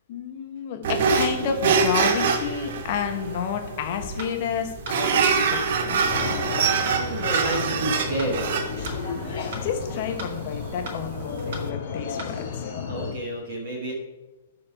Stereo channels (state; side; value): inverted; both; correlation -0.40